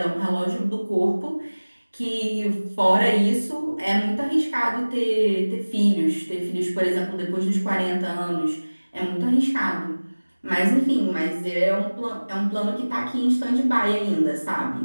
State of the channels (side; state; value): both; inverted; correlation -1.00